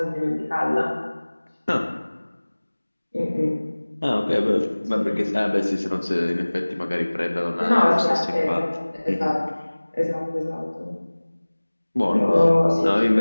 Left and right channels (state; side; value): inverted; both; correlation -1.00